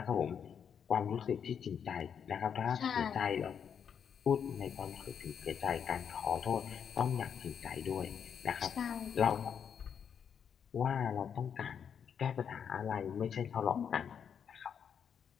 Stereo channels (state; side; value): quieter; right; 7.6 dB